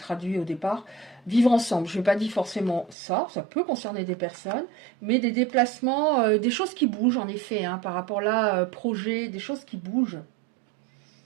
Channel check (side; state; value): left; drops out; at 3.0 s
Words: au départ, vivre ensemble. Je ne vais pas dire forcément ça, ça peut concerner des personnes, mais des déplacements, des choses qui bougent en effet, hein, par rapport là, projet, des choses qui bougent.